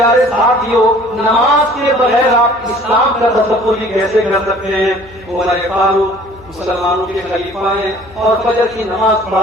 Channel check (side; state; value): left; noise; hum, 23 dB below the sound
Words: ساتھیوں، نماز کے بغیر آپ اسلام کا تصور بھی کیسے کر سکتے ہیں؟ عمر فاروق مسلمانوں کے خلیفہ ہیں اور فجر کی نماز